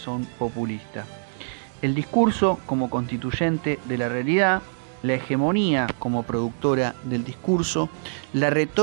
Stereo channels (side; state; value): left; silent; digital silence